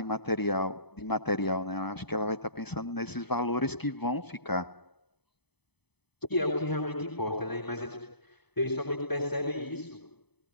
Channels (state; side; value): late; right; 0.98 ms